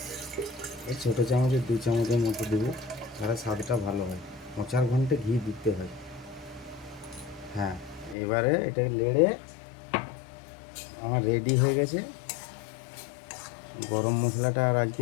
এই ছোটো চামচের 2 চামচের মতো দেবো, তাহলে স্বাদটা ভালো হয়। 4 ঘন্টা ঘি দিতে হয়। হ্যাঁ, এবারে এটাকে নেড়ে আমার রেডি হয়ে গেছে। গরম মশলাটা আর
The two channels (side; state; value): right; drops out; at 8.2 s